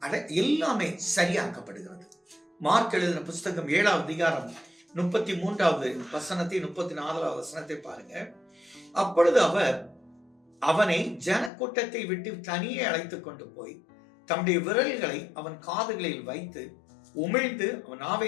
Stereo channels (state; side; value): drops out; right; at 11.5 s